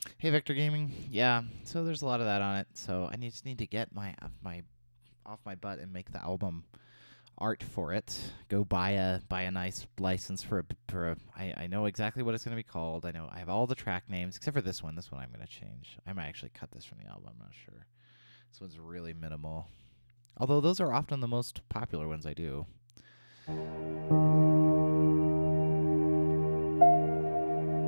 Hey, Vector Gaming. Yeah, so there's a lot of that on it. So I just need to get my off my butt and make the album art for it. Go buy a nice license for a I know exactly what it's going to be called. I have all the track names except for this one. This one I'm going to change. I might actually cut this from the album. I'm not sure. This one's really minimal. Although those are often the most popular ones I do. I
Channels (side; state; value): both; inverted; correlation -1.00